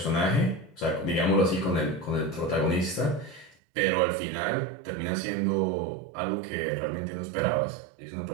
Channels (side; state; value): left; drops out; at 3.6 s